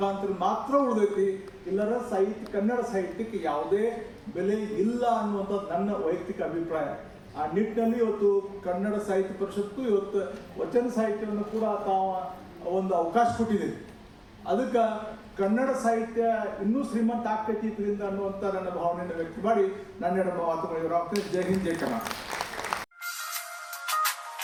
ಮಾತ್ರ ಉಳಿದೈತಿ. ಇಲ್ಲರ ಕನ್ನಡ ಸಾಹಿತ್ಯಕ್ಕೆ ಯಾವುದೇ ಬೆಲೆ ಇಲ್ಲ ಅನ್ನುವಂಥದ್ದು ನನ್ನ ವೈಯಕ್ತಿಕ ಅಭಿಪ್ರಾಯ. ಆ ನಿಟ್ಟಿನಲ್ಲಿ ಇವತ್ತು ಕನ್ನಡ ಸಾಹಿತ್ಯ ಪರಿಷತ್ತು ಇವತ್ತು ವಚನ ಸಾಹಿತ್ಯವನ್ನು ಕೂಡ ತಾವು ಒಂದು ಅವಕಾಶ ಕೊಟ್ಟಿದೆ. ಅದಕ್ಕೆ ಕನ್ನಡ ಸಾಹಿತ್ಯ ಇನ್ನೂ ಶ್ರೀಮಂತ ಆಗ್ತೈತಿ ಇದರಿಂದ ಅನ್ನುವಂಥ ನನ್ನ ಭಾವನೆಯನ್ನು ವ್ಯಕ್ತ ಮಾಡಿ ನನ್ನ ಎರಡು ಮಾತುಗಳು ಇವರು. ಜೈ ಹಿಂದ್, ಜೈ Karnataka.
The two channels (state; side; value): identical; both; correlation 1.00